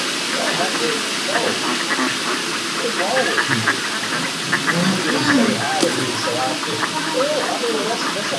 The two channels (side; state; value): both; identical; correlation 1.00